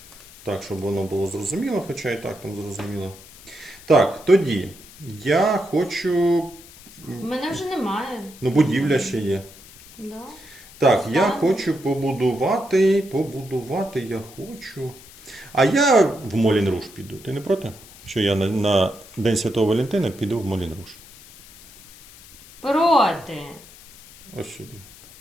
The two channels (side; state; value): left; noise; hiss, 21 dB below the sound